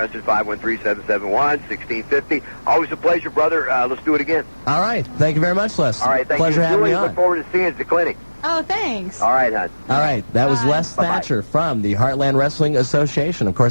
513-771-1650. Always a pleasure, brother. Let's do it again. All right. Thank you very much, Les. All right. Thank Pleasure you. having Julie, me on. look forward to seeing you at the clinic. Oh, thanks. All right, hon. All right. That was Les Thatcher from the Heartland Wrestling Association. Of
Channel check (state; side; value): inverted; both; correlation -1.00